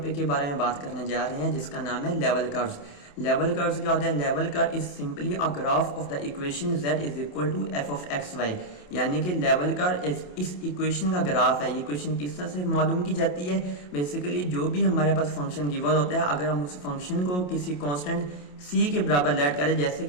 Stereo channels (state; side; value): late; right; 28 ms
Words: के बारे में बात करने जा रहे हैं जिसका नाम है लेवल कर्व्स। लेवल कर्व्स क्या होता है? Level curve is simply a graph of the equation z is equal to f of X Y. यानी कि लेवल कर्व इस इक्वेशन का ग्राफ है। ये इक्वेशन किस तरह से मालूम की जाती है? बेसिकली जो भी हमारे पास फंक्शन गिवन होता है, अगर हम उस फंक्शन को किसी कांस्टेंट c के बराबर लेट करें, जैसे